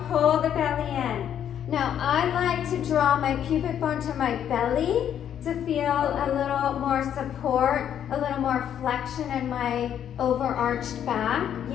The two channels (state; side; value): quieter; right; 9.6 dB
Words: pull the belly in. Now I like to draw my pubic bone to my belly to feel a little more support, a little more flexion in my overarched back.